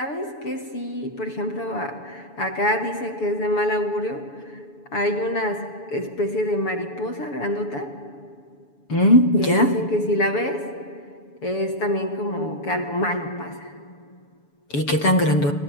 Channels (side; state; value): right; late; 7.0 ms